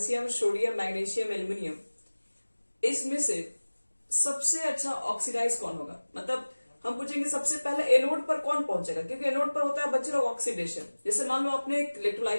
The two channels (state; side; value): inverted; both; correlation -1.00